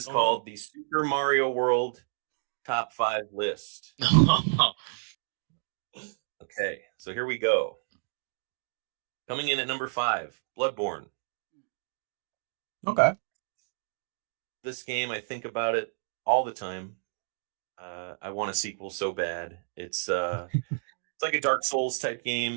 called the Super Mario World Top 5 list. Okay, so here we go. Coming in at number 5, Bloodborne. Okay. This game, I think about it all the time. I want a sequel so bad. It's like a Dark Souls type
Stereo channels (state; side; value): silent; left; digital silence